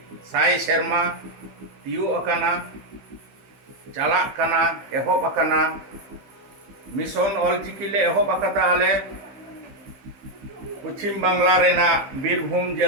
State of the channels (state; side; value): late; left; 15 ms